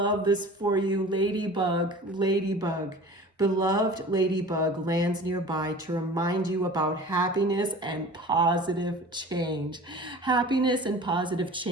this for you. Ladybug, ladybug. Beloved ladybug lands nearby to remind you about happiness and positive change. Happiness and positive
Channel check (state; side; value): normal; both; correlation 0.40